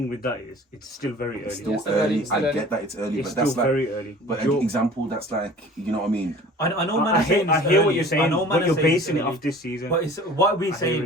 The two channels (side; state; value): both; normal; correlation 0.45